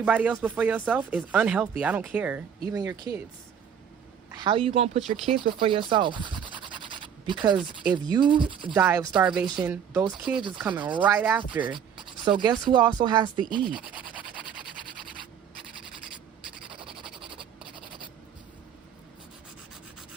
else before yourself is unhealthy. I don't care. Even your kids. How you gonna put your kids before yourself? Because if you die of starvation, those kids is coming right after. So guess who also has to eat?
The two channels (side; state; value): left; quieter; 8.1 dB